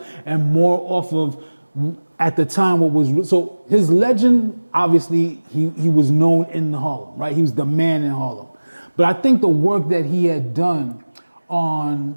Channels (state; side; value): inverted; both; correlation -1.00